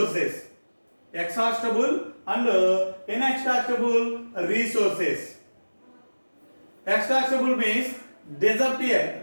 Exhaustible and inexhaustible resources. Exhaustible means disappear.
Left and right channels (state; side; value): inverted; both; correlation -1.00